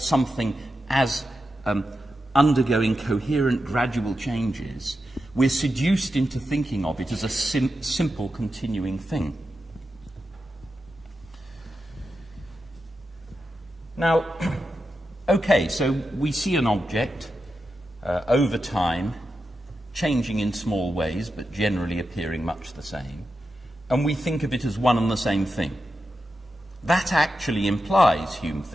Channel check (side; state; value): both; normal; correlation 0.89